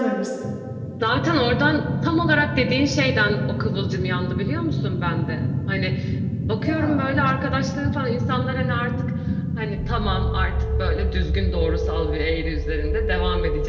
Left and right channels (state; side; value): identical; both; correlation 1.00